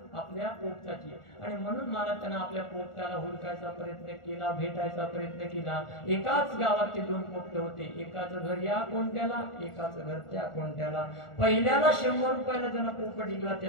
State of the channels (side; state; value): right; late; 1.4 ms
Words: आपल्या पोपटाची। आणि म्हणून मला त्यानं आपल्या पोपटाला हुडकायचा प्रयत्न केला, भेटायचा प्रयत्न केला। एकाच गावात ते 2 पोपट होते, एकाचं घर या कोणत्याला, एकाचं घर त्या कोणत्याला। पहिल्याला 100 रुपयाला ज्याला पोपट विकला